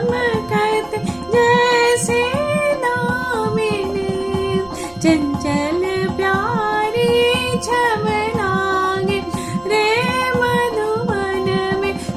जैसे दामिनी चंचल प्यारी छम लागे रे मधुबन में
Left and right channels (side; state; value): right; noise; rumble, 28 dB below the sound